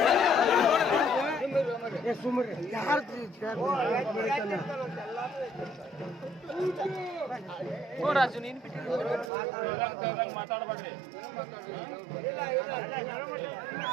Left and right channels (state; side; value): drops out; left; at 9.3 s